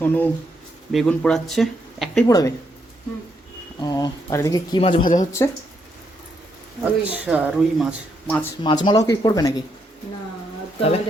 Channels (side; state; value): both; normal; correlation 0.77